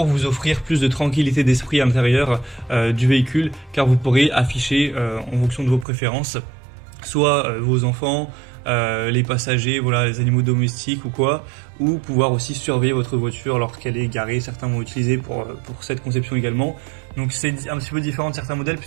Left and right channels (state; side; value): drops out; left; at 5.9 s